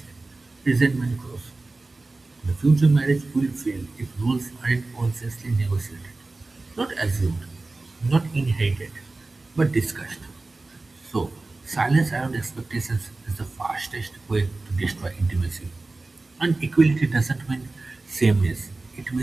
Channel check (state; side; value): quieter; left; 3.3 dB